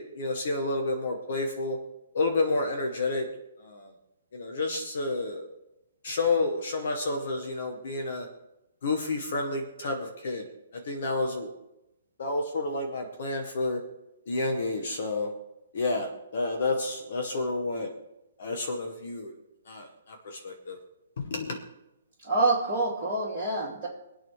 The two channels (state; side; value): inverted; both; correlation -0.64